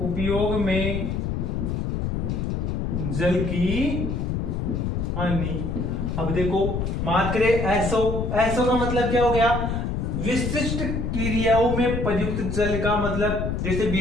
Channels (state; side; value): noise; left; rumble, 1 dB below the sound